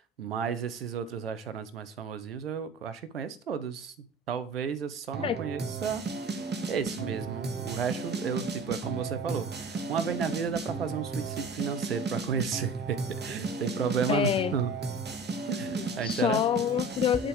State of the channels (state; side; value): normal; both; correlation 0.39